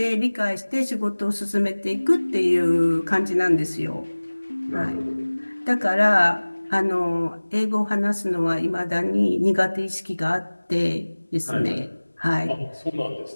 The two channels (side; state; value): both; inverted; correlation -1.00